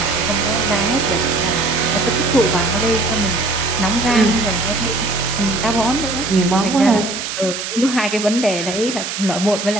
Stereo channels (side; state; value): right; noise; hiss, 6 dB below the sound